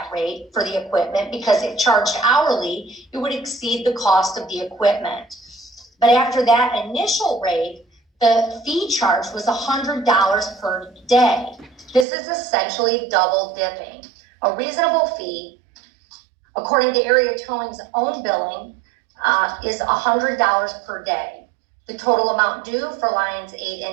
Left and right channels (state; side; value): drops out; left; at 12.1 s